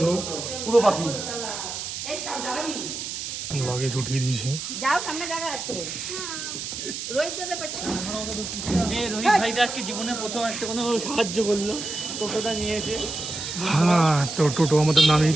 পুরো পাখি লাগেজ উঠিয়ে দিয়েছি। যাও, সামনে জায়গা আছে। রোহিত দাদা পেছনে। রোহিত ভাইটা আজকে জীবনে প্রথম একটা কোনো সাহায্য করলো, টোটোটা নিয়েছে। হ্যাঁ, তো টোটো আমাদের নামিয়ে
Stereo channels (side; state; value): right; noise; hiss, 6 dB below the sound